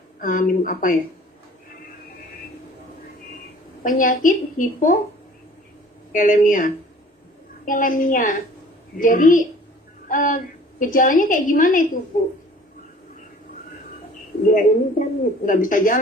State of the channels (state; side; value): normal; both; correlation 0.49